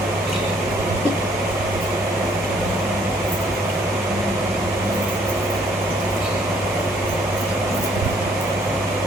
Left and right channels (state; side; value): normal; both; correlation 0.64